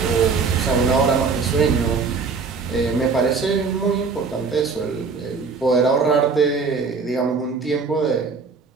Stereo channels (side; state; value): left; quieter; 4.9 dB